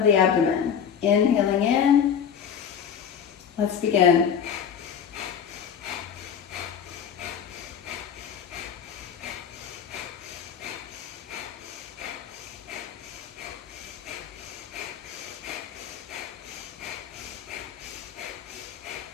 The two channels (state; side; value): quieter; right; 7.8 dB